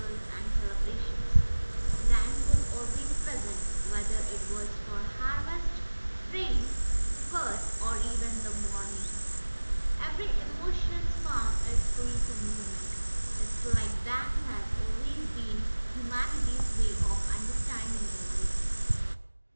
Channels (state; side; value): inverted; both; correlation -1.00